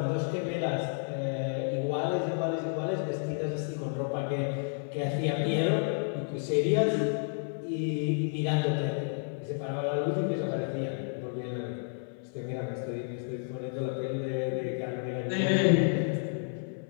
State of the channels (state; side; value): silent; right; 56 dB below the other